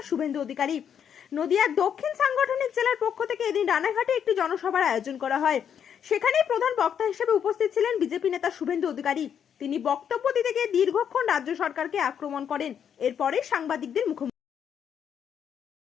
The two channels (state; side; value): quieter; right; 8.3 dB